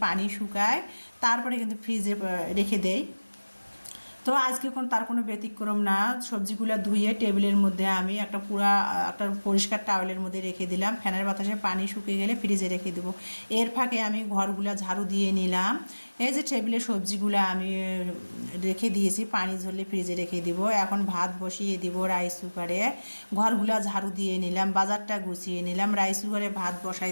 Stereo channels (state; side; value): inverted; both; correlation -1.00